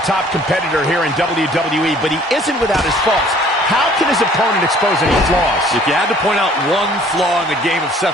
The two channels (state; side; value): normal; both; correlation 0.55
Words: top competitor here in WWE, but he isn't without his faults. How can his opponent expose any flaws? If you had to point out one flaw in the game of